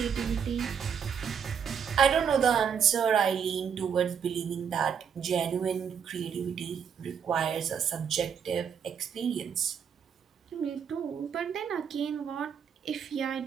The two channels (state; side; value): quieter; left; 7.3 dB